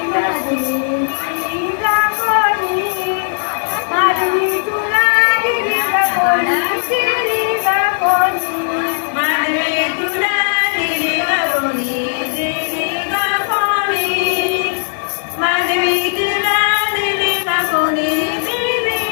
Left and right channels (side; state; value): right; silent; 58 dB below the other